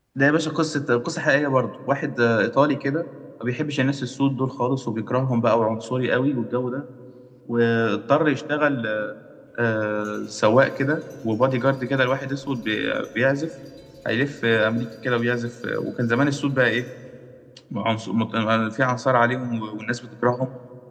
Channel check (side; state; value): both; identical; correlation 1.00